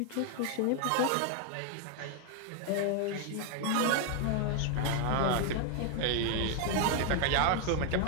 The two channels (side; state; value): both; different; correlation 0.00